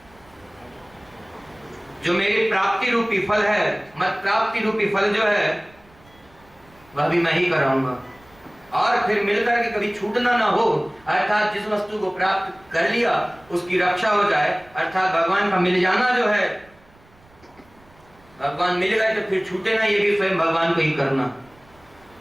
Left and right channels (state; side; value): noise; right; rumble, 29 dB below the sound